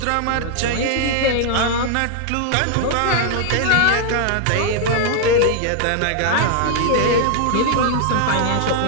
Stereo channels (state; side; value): different; both; correlation 0.00